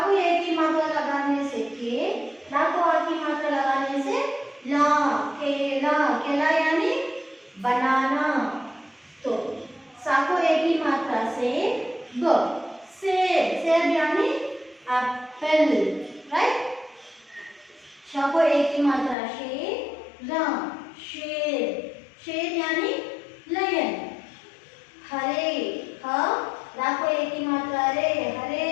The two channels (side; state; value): right; drops out; at 19.2 s